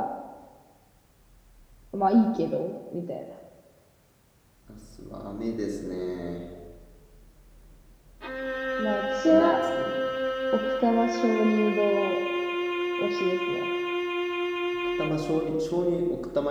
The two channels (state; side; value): identical; both; correlation 1.00